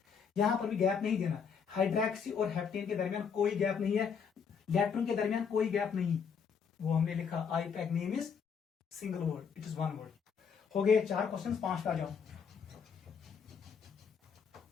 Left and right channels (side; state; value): right; quieter; 6.5 dB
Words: यहां पर भी गैप नहीं देना। हाइड्रोक्सी और हेप्टेन के दरमियान कोई गैप नहीं है, इलेक्ट्रॉन के दरमियान कोई गैप नहीं, वो हमने लिखा IUPAC name is single word, it is one word. हो गए 4 क्वेश्चन, 5 पे आ जाओ।